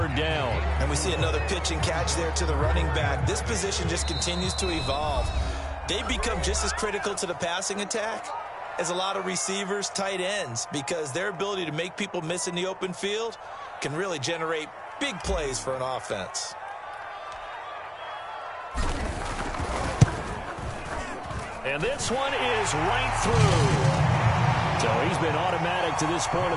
down. And we see another pitch and catch there to the running back. This position just continues to evolve. They become just as critical to the passing attack as a lot of receivers, tight ends, because their ability to make people miss in the open field can really generate big plays for an offense. And this one is right through. So he's been automatic to this point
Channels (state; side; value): identical; both; correlation 1.00